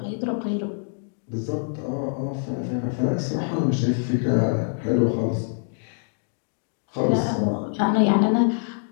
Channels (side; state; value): right; silent; digital silence